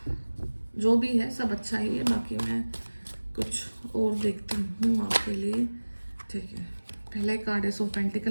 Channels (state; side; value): inverted; both; correlation -1.00